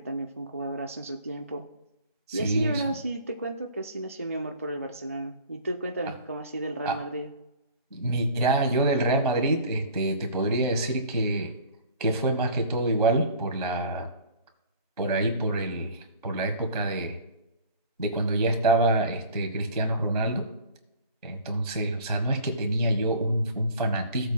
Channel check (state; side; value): inverted; both; correlation -0.46